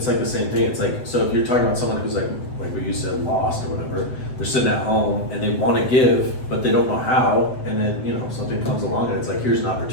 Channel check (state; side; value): late; right; 7.9 ms